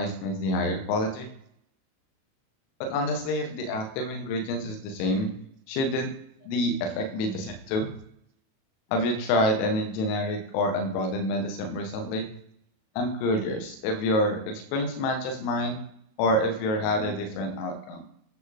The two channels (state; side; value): late; right; 37 ms